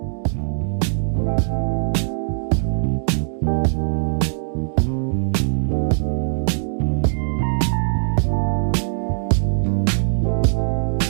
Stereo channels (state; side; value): silent; left; 65 dB below the other